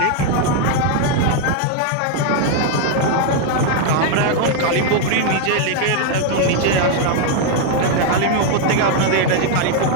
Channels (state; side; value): different; both; correlation 0.00